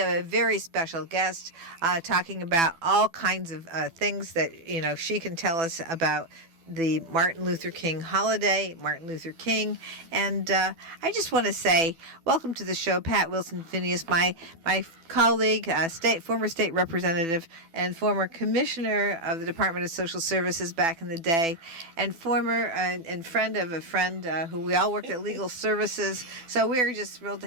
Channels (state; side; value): late; left; 12 ms